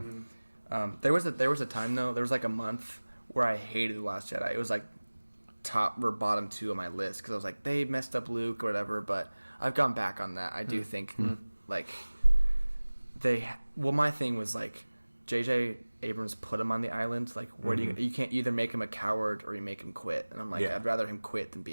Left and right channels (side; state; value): both; inverted; correlation -1.00